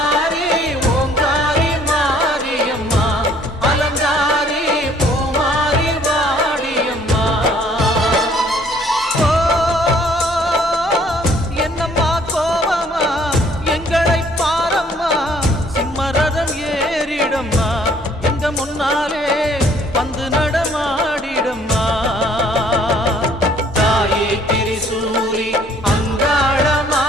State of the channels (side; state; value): both; normal; correlation 0.60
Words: ஓங்காரி மாரியம்மா அலங்காரி பூமாரி வாடியம்மா. ஓ என்னம்மா கோவமா எங்களை சிம்மரதம் ஏறிடம்மா எங்க முன்னாலே வந்து நடமாடிடம்மா. தாயே திரிசூலி அங்காள